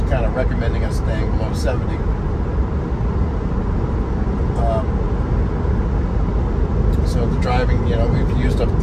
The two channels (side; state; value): both; identical; correlation 1.00